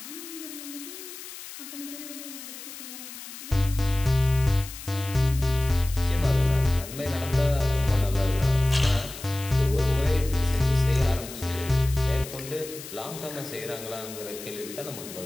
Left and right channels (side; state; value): left; noise; hiss, 13 dB below the sound